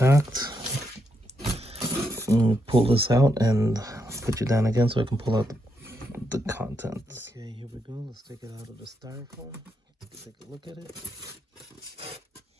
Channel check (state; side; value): normal; both; correlation 0.81